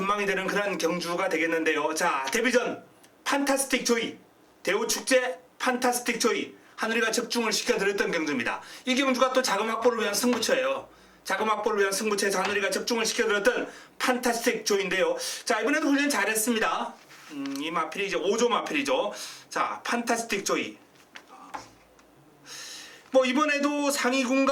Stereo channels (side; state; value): both; identical; correlation 1.00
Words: 되는 그런 경주가 되겠는데요. 자, 데뷔전 판타스틱 조이, 대우축제 판타스틱 조이, 한울이가 적중을 시켜드렸던 경주입니다. 이 경주가 또 자금 확보를 위한 승부처예요. 자금 확보를 위한 승부처에서 한울이가 적중을 시켜드렸던 판타스틱 조이인데요. 자, 이번에도 훈련 잘했습니다. 이 마필이 이제 5조 마필이죠. 자, 판타스틱 조이. 뭐 이번에도